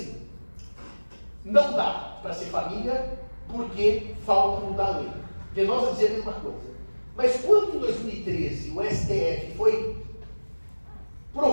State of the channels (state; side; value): inverted; both; correlation -1.00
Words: não dá para ser família porque falta mudar a lei. Venosa dizia a mesma coisa. Mas quando em 2013 o STF foi